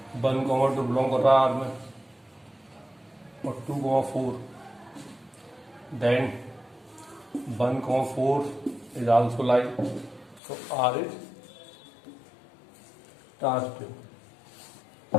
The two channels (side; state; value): right; drops out; at 10.4 s